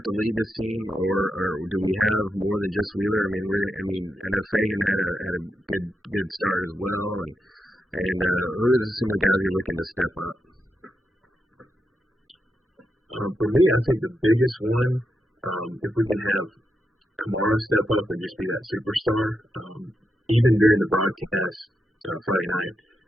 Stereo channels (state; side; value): normal; both; correlation 0.85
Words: to lead this team, or do we have more than just Wheeler? I know Fagan had a good start as well, and who are some of the guys you're looking to step up? For me, I think the biggest one, if we can have Kamara step up and just be that superstar, even during the broadcast Friday night.